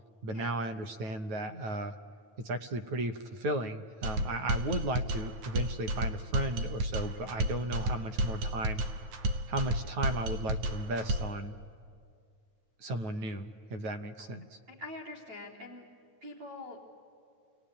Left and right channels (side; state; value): left; late; 9.4 ms